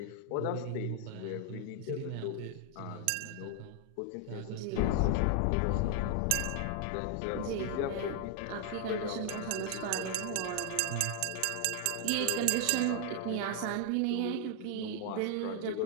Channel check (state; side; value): different; both; correlation 0.00